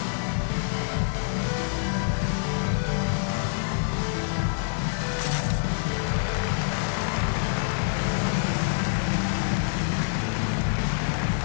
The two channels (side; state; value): right; silent; digital silence